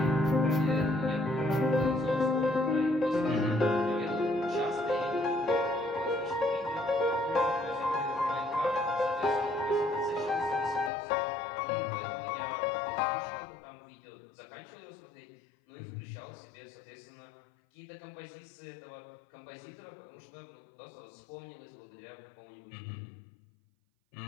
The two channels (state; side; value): drops out; right; at 10.9 s